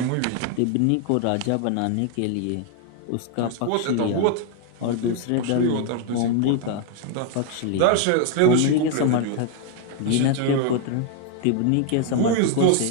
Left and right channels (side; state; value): both; different; correlation 0.00